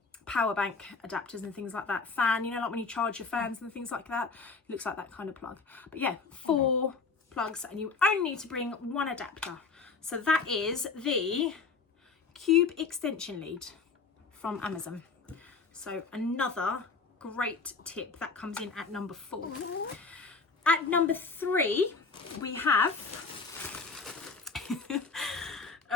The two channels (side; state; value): right; quieter; 4.7 dB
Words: bank adapters and things like that. Fan, you know, like when you charge your fans and things like that, it looks like that kind of plug. But yeah, 4 plugs, and you only need to bring 1 adapter. So that is the Cube extension lead from Amazon. So another great tip that comes in at number 4. At number 3 we have